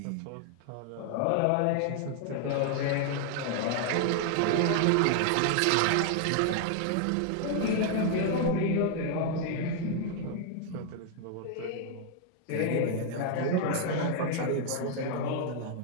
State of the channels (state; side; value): different; both; correlation 0.00